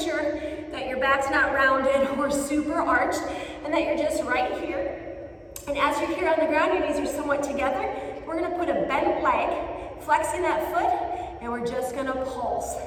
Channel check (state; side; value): identical; both; correlation 1.00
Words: that your back's not rounded or super arched, and that you're just right here. And as you're here on the ground, your knees are somewhat together. We're gonna put a bent leg, flexing that foot, and we're just gonna pulse.